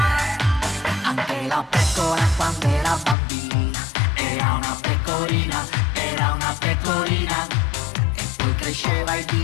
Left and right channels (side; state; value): right; drops out; at 3.2 s